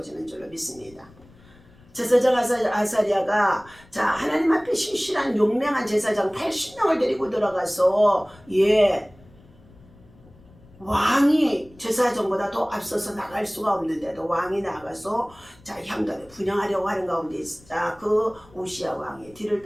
줄로 믿습니다. 제사장 아사랴가 하나님 앞에 신실한 용맹한 제사장 80명을 데리고 들어가서 왕이 제사장보다 더 앞서서 나갈 수가 없는데도 왕이 나가서 향단에 분향하려고 하는 가운데 있자 그 우시야 왕의 뒤를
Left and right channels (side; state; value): left; noise; rumble, 25 dB below the sound